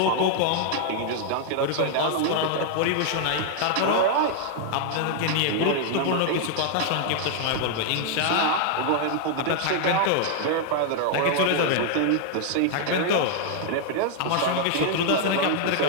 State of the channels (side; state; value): both; different; correlation 0.00